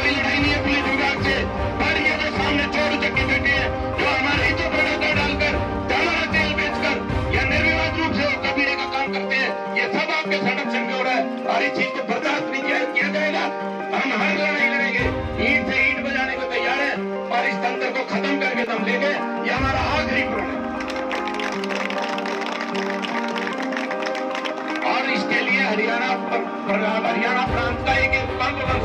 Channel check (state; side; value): identical; both; correlation 1.00